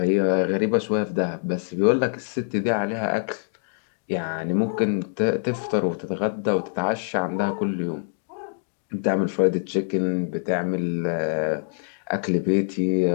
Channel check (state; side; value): silent; right; digital silence